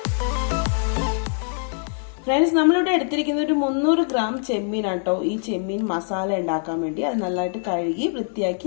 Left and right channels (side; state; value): right; silent; digital silence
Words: ഫ്രണ്ട്സ്, നമ്മളിവിടെ എടുത്തിരിക്കുന്ന ഒരു 300 ഗ്രാം ചെമ്മീനാണ് കേട്ടോ. ഈ ചെമ്മീൻ മസാല ഉണ്ടാക്കാൻ വേണ്ടി അത് നല്ലതായിട്ട് കഴുകി വൃത്തിയാക്കി